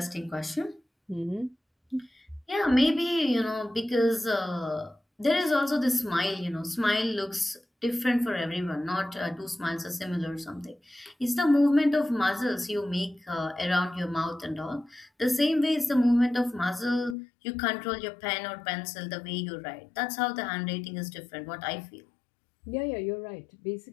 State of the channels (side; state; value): right; drops out; at 17.2 s